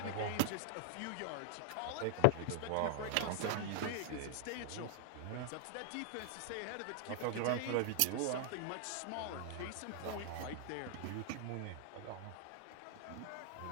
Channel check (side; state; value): both; different; correlation 0.00